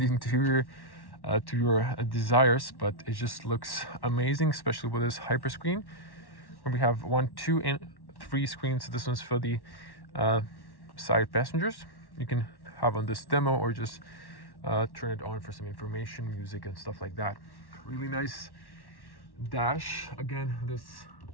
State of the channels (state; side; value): late; right; 1.1 ms